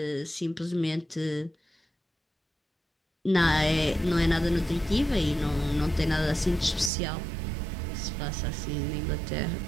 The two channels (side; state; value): left; drops out; at 6.9 s